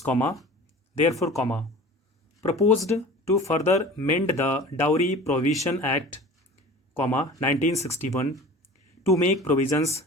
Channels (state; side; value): normal; both; correlation 0.40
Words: comma therefore comma proposed to further mend the dowry provision act comma 1961 to make provisions